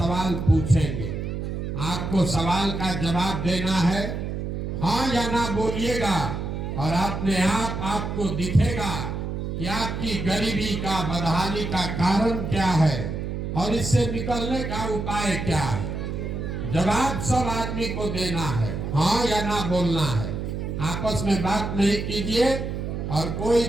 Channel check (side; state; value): right; noise; hum, 4 dB below the sound